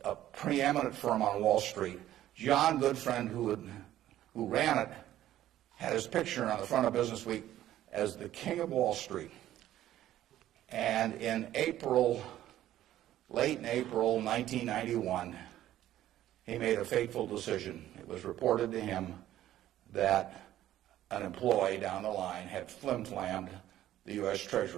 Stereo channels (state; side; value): quieter; left; 13.1 dB